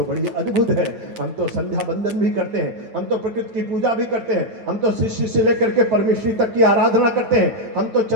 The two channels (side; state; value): left; late; 9.0 ms